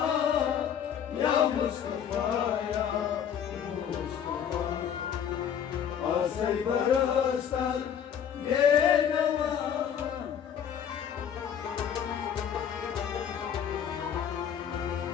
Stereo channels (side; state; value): right; quieter; 8.6 dB